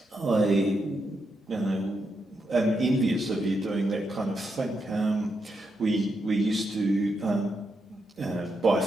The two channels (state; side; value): normal; both; correlation 0.83